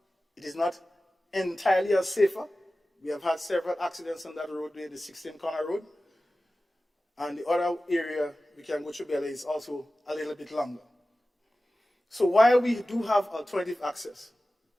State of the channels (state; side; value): normal; both; correlation 0.95